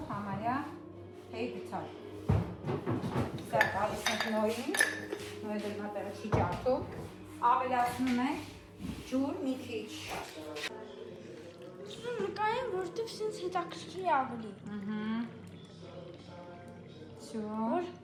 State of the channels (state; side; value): identical; both; correlation 1.00